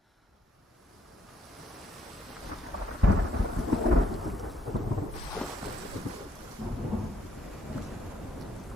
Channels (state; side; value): normal; both; correlation 0.69